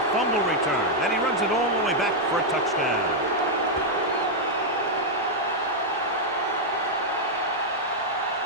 fumble return. And he runs it all the way back for a touchdown.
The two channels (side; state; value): both; normal; correlation -0.03